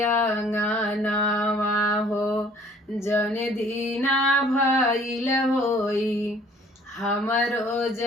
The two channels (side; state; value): both; normal; correlation 0.56